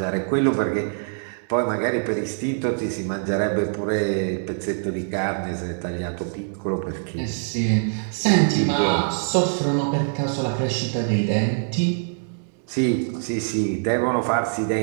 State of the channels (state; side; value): silent; left; digital silence